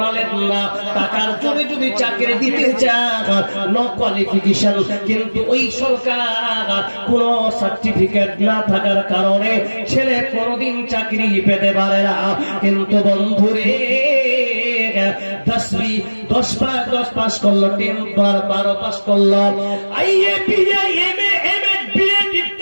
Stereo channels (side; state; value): both; inverted; correlation -1.00